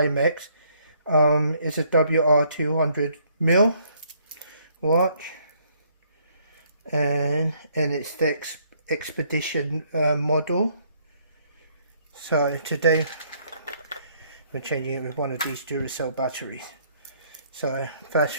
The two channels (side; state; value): both; inverted; correlation -0.67